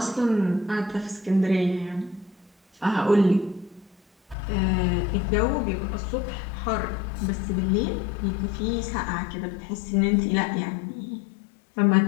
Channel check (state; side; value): drops out; right; at 4.4 s